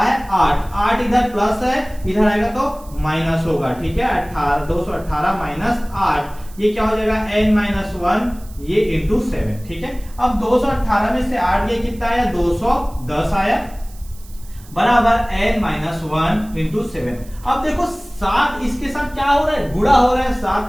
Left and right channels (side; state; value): right; noise; hiss, 23 dB below the sound